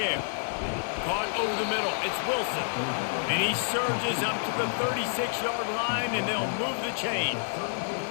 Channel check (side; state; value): right; silent; digital silence